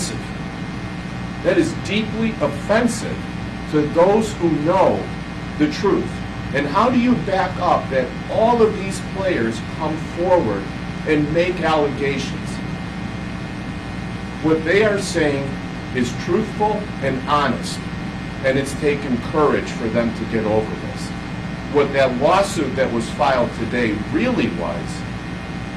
That is deeply offensive to those who know the truth. And how do you back up that all of these players come forward and make allegations? What they are saying is truthful and honest, and it's taken courage for them to get over this. What that lawsuit that was filed today really was,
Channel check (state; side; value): identical; both; correlation 1.00